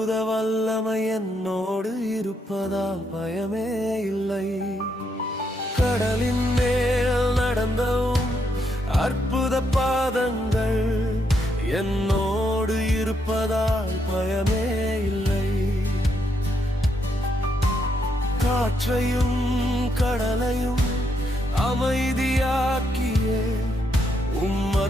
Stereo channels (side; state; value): both; normal; correlation 0.77